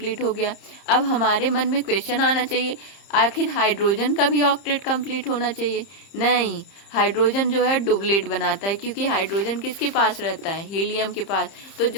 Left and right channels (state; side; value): late; right; 30 ms